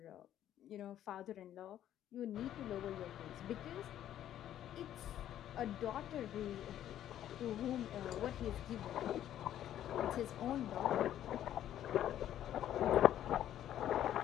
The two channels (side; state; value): right; quieter; 11.5 dB